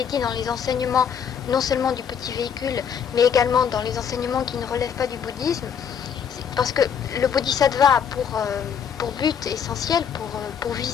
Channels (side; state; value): right; quieter; 7.6 dB